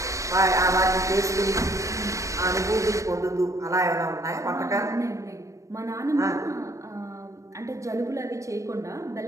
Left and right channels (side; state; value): left; late; 0.15 ms